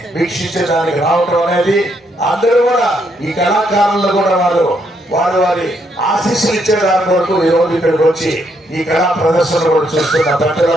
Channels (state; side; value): normal; both; correlation 0.75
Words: వీక్షించడానికి రావడం అనేది, అందరూ కూడా ఈ కళాకారులు కూడా వారి ఆశీస్సులు ఇచ్చే దాని వరకు ఈ రోజు ఇక్కడికి వచ్చి ఈ కళా ప్రదర్శన కూడా చూస్తున్న